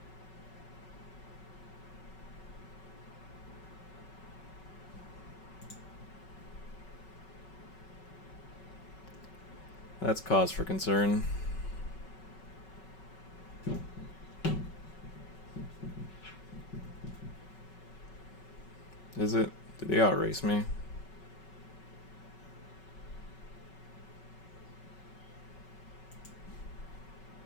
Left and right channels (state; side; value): late; right; 5.3 ms